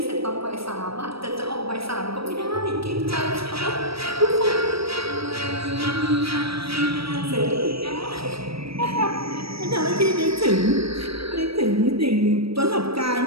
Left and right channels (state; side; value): late; left; 0.76 ms